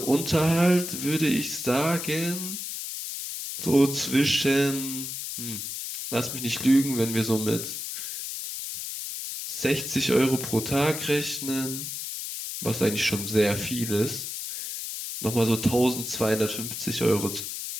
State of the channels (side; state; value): left; noise; hiss, 6 dB below the sound